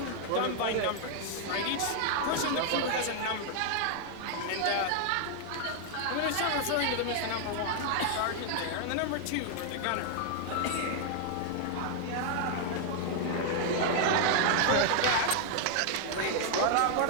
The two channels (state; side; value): different; both; correlation 0.00